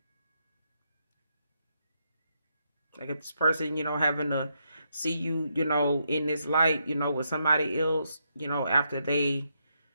Like if this person, having to see you, in this light, with somebody else, after they,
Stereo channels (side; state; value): both; inverted; correlation -0.79